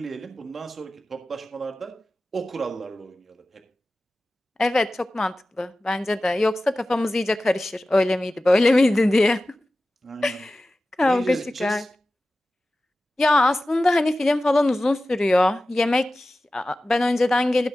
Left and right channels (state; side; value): normal; both; correlation 0.95